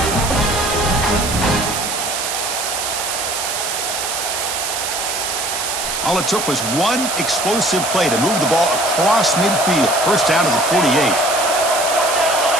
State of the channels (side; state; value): right; noise; hiss, 3 dB below the sound